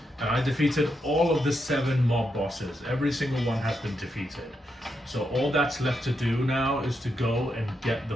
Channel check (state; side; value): normal; both; correlation 0.82